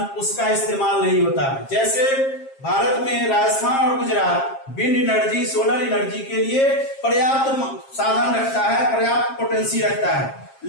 उसका इस्तेमाल नहीं होता है। जैसे भारत में राजस्थान और Gujarat wind energy, solar energy के लिए पर्याप्त साधन रखता है, पर्याप्त पोटेंसी रखता है,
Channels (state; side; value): late; right; 7.4 ms